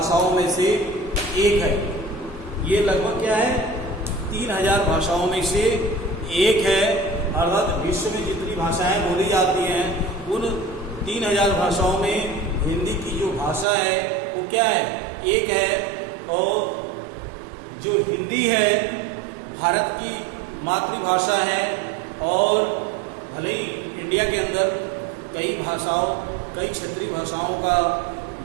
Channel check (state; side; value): drops out; left; at 13.7 s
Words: में से एक है। ये लगभग क्या है, 3000 भाषाओं में से एक है। अर्थात विश्व में जितनी भाषाएं बोली जाती हैं, उन 3000 भाषाओं में हिंदी की जो भाषा है वो क्या है, एक है। और जो हिंदी है भारत की मातृभाषा है और भले ही इंडिया के अंदर कई क्षेत्रीय भाषाओं का